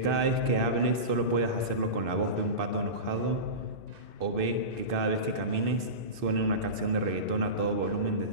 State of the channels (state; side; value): late; left; 2.6 ms